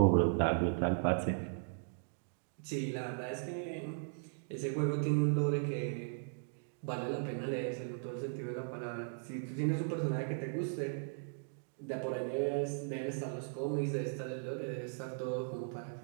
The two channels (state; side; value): silent; left; digital silence